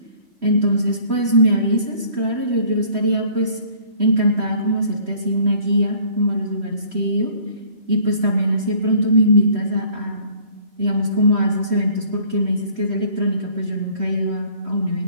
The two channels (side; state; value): left; late; 3.1 ms